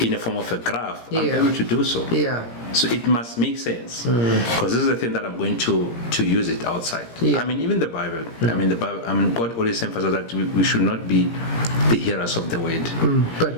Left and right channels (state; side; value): late; right; 17 ms